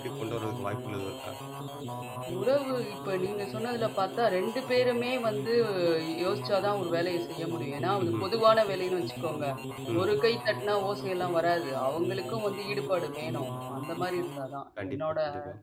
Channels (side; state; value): both; identical; correlation 1.00